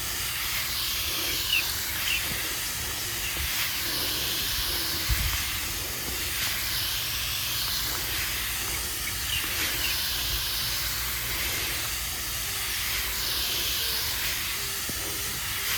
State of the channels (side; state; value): both; identical; correlation 1.00